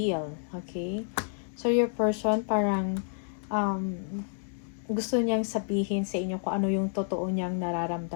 Okay? So, your person parang gusto niyang sabihin sa inyo kung ano yung totoo niyang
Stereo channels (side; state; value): right; silent; digital silence